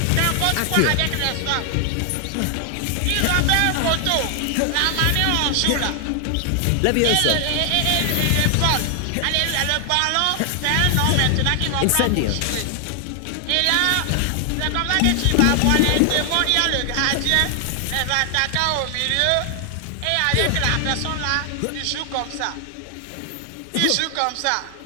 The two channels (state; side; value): different; both; correlation 0.00